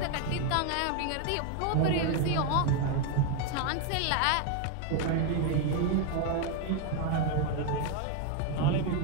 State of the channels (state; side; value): different; both; correlation 0.01